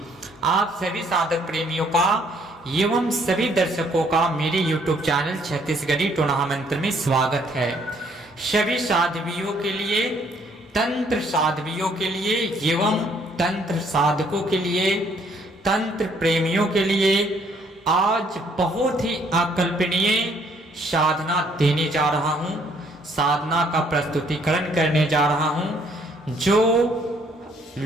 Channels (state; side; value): normal; both; correlation 0.65